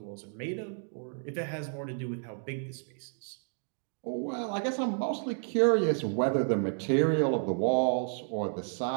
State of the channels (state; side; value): silent; left; 57 dB below the other